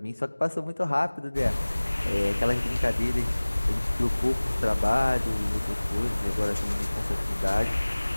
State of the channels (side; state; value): both; inverted; correlation -1.00